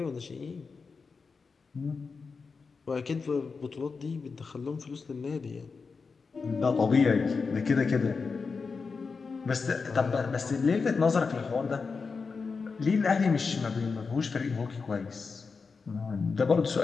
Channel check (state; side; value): quieter; right; 4.8 dB